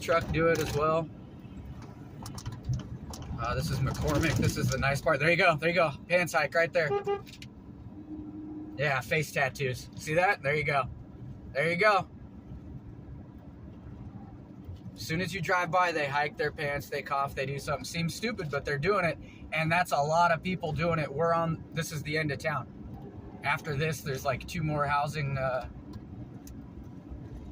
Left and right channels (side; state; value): both; identical; correlation 1.00